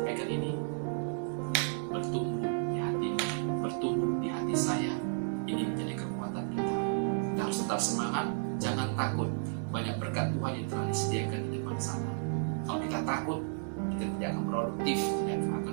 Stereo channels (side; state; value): left; silent; digital silence